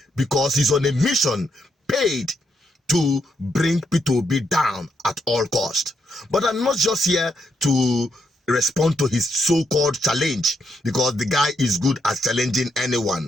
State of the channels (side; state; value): both; normal; correlation 0.78